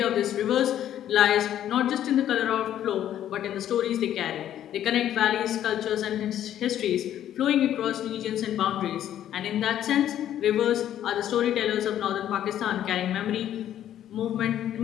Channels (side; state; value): right; quieter; 11.2 dB